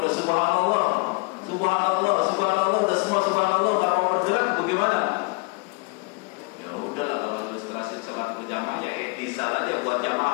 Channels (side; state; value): right; quieter; 29.4 dB